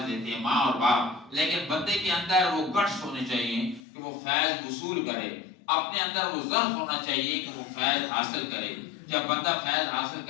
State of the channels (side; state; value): right; drops out; at 3.8 s